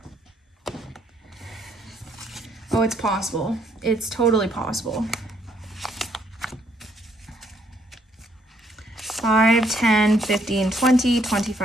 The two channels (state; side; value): normal; both; correlation 0.69